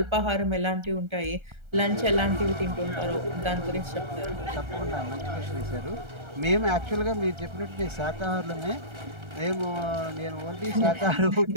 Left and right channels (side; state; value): left; late; 1.3 ms